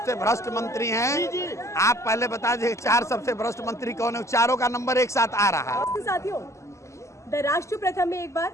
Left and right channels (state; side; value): late; right; 0.14 ms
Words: भ्रष्ट मंत्री हैं, आप पहले बता दीजिए 4 सबसे भ्रष्ट मंत्री कौन है? चारों का नंबर एक साथ आ रहा है। साथियों, द राष्ट्र प्रथम में एक बार